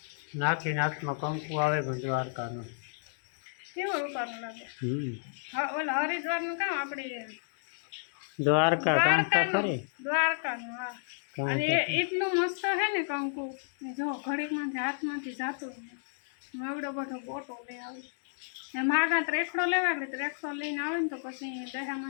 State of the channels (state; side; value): silent; right; digital silence